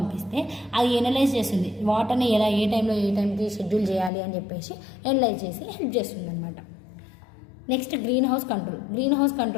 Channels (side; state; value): right; drops out; at 4.1 s